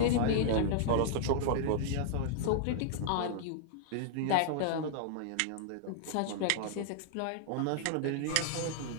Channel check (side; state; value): both; different; correlation -0.01